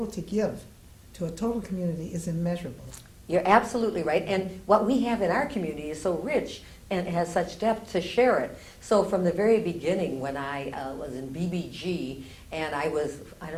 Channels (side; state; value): both; identical; correlation 1.00